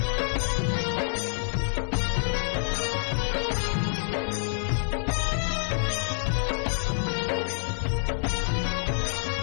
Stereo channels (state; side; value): silent; right; 60 dB below the other